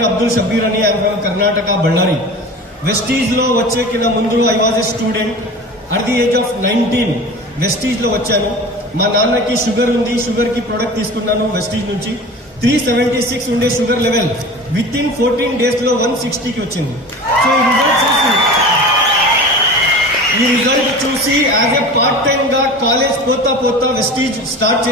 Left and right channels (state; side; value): normal; both; correlation 0.35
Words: అబ్దుల్ షబీర్ అని, I'm from Karnataka, Ballari. Vestige లో వచ్చే కింద ముందు I was a student at the age of 19. Vestige లో వచ్చాను. మా నాన్నకి షుగర్ ఉంది, షుగర్ కి ప్రొడక్ట్ తీసుకున్నాను వెస్టీజ్ నుంచి. 376 ఉండే sugar level within 14 days లో 160కి వచ్చింది. సో ఈ రిజల్ట్ చూసి యాజ్ ఎ పార్ట్ టైమ్ గా కాలేజ్ పోతా వెస్టీజ్ స్టార్ట్